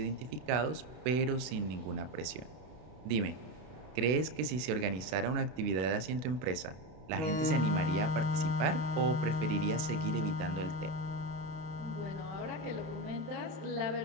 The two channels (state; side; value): late; left; 32 ms